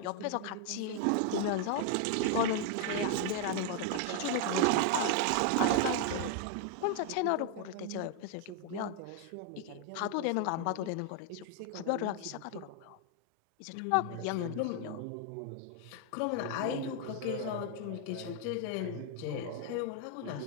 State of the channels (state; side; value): different; both; correlation 0.00